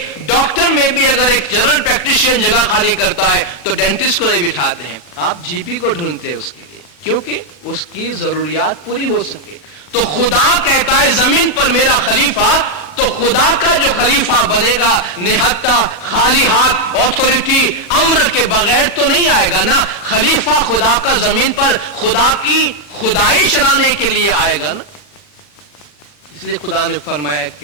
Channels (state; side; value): late; right; 40 ms